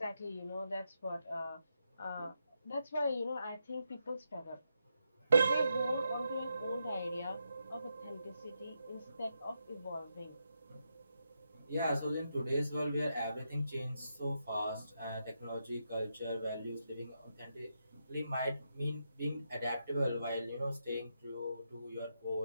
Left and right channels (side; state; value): both; inverted; correlation -0.83